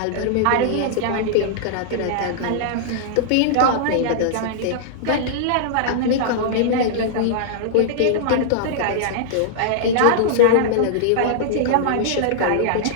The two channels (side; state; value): both; different; correlation -0.02